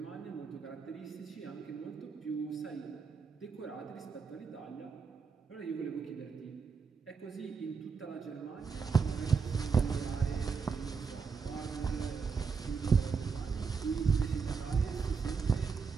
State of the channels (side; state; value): left; quieter; 5.4 dB